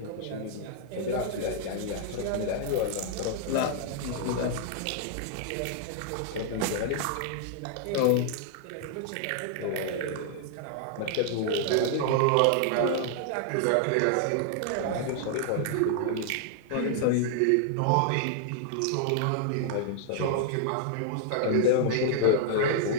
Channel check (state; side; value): different; both; correlation -0.01